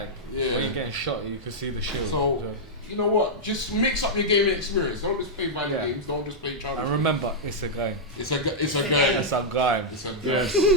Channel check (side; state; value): both; normal; correlation -0.06